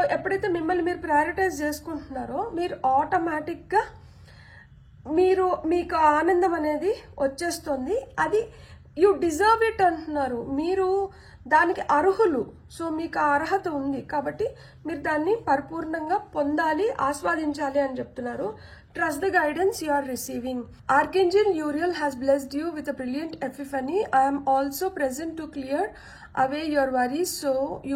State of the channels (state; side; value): identical; both; correlation 1.00